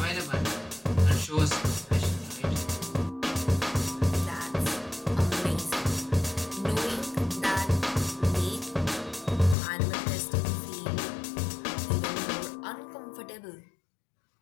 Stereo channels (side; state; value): right; drops out; at 9.6 s